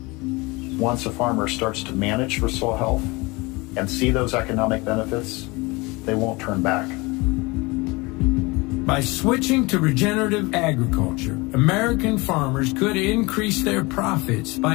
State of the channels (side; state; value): right; quieter; 24.6 dB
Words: Once a farmer starts to manage for soil health and see those economic benefits, they won't turn back. By switching to regenerative agriculture, American farmers could increase their profits